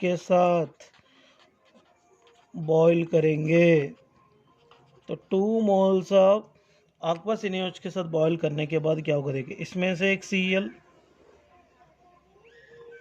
साथ बॉईल करेंगे। तो 2 मोल्स ऑफ aqueous NaOH के साथ बॉईल करने के बाद क्या होगा, देखिए इसमें से एक Cl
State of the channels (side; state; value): both; identical; correlation 1.00